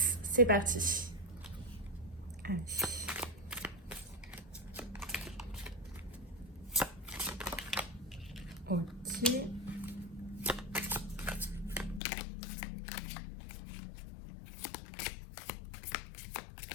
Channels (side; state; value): right; drops out; at 12.0 s